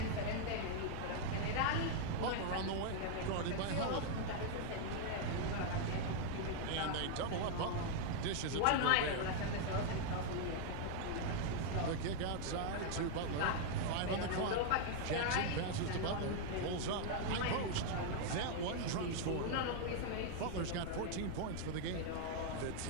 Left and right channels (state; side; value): different; both; correlation 0.00